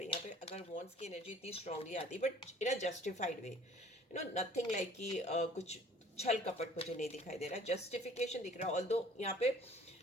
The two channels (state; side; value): normal; both; correlation 0.53